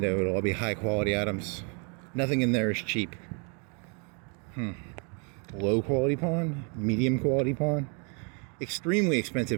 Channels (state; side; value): quieter; left; 36.6 dB